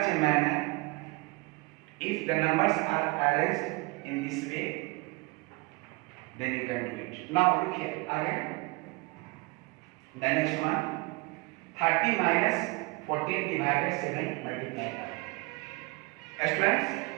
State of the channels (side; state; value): left; quieter; 26.4 dB